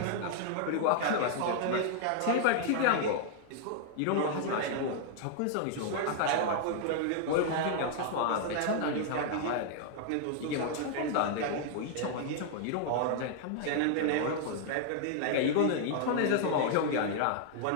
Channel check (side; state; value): both; different; correlation 0.00